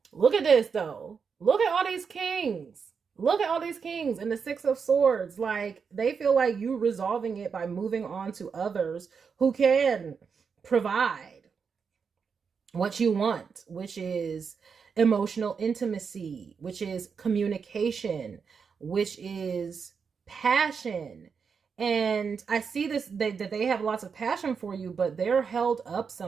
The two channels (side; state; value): left; quieter; 6.0 dB